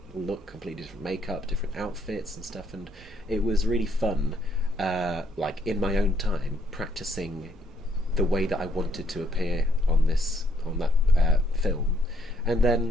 look, completely different makeup, different outfits and stuff. And it was really fun, like in my own time, practicing the way that I wanted to appear on that film, and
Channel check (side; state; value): both; normal; correlation 0.69